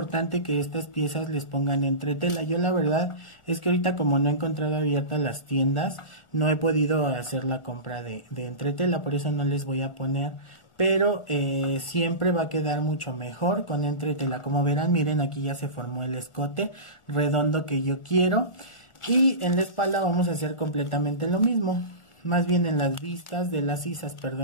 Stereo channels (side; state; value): right; late; 1.4 ms